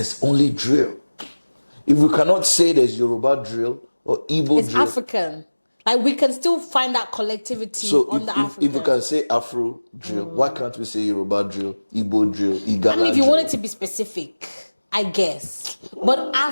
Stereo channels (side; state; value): both; inverted; correlation -1.00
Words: only drill. If we cannot say there's Yoruba drill or Igbo drill... It's African. Like we can still find that collectivity So on the if we African. can say Afro drill, why can't we say Yoruba drill, Igbo drill, Igala I mean, if you drill? wanted to be specific, I guess. But